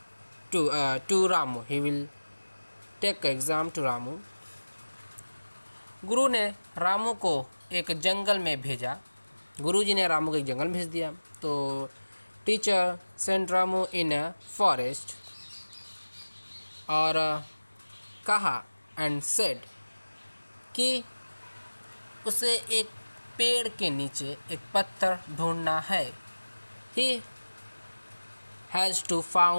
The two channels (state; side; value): inverted; both; correlation -1.00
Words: to Ramu। गुरु ने रामू को एक जंगल में भेजा। गुरुजी ने रामू को एक जंगल में भेज दिया। तो teacher sent Ramu in a forest और कहा एंड सेड कि उसे एक पेड़ के नीचे एक पत्थर ढूंढना है। He has to